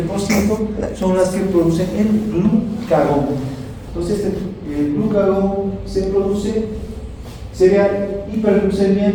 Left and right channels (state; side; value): identical; both; correlation 1.00